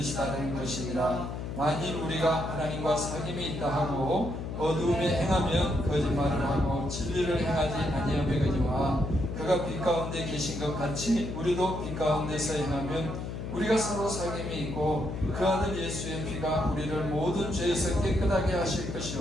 것이니라. 만일 우리가 하나님과 사귐이 있다 하고 어두움에 행하면 거짓말을 하고 진리를 행하지 아니하거니와 그가 빛 가운데 계신 것 같이 우리도 빛 가운데서 행하면 우리가 서로 사귐이 있고 그 아들 예수의 피가 우리를 모든 죄에서 깨끗하게 하실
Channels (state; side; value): noise; left; hum, 6 dB below the sound